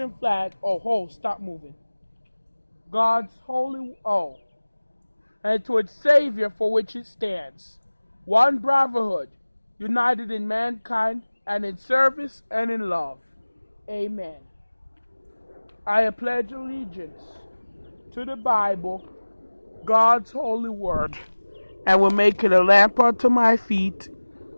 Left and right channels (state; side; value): inverted; both; correlation -1.00